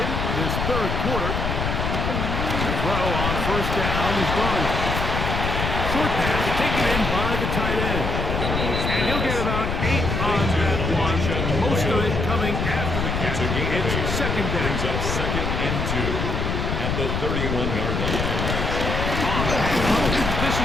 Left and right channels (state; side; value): noise; left; rumble, 1 dB below the sound